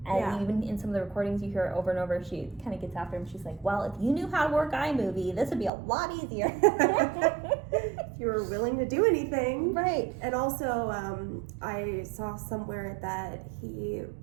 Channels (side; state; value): left; drops out; at 5.7 s